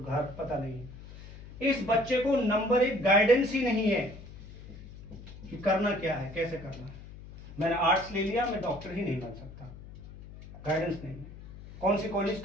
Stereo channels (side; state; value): left; noise; hum, 16 dB below the sound